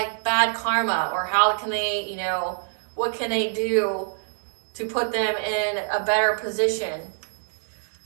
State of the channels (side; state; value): left; silent; digital silence